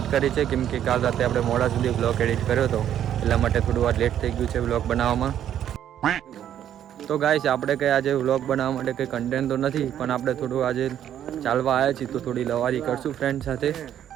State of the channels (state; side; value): quieter; left; 10.4 dB